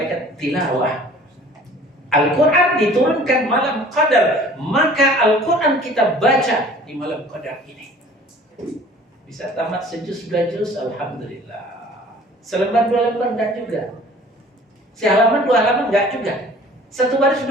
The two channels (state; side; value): normal; both; correlation 0.49